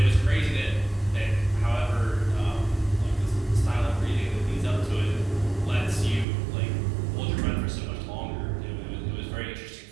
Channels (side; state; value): left; drops out; at 6.2 s